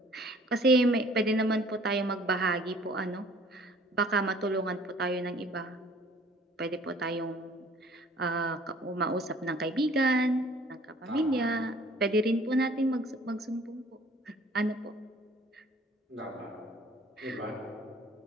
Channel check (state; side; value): normal; both; correlation 0.54